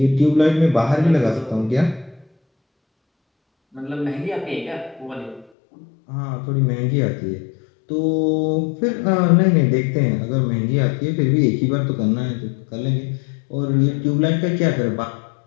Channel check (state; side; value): drops out; right; at 5.5 s